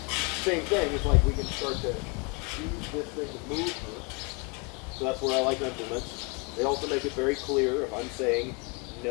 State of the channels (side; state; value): right; quieter; 30.5 dB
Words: same thing, it's like we can start to use this thing to move her. So that's where I like implements. They also make it very clear if I'm saying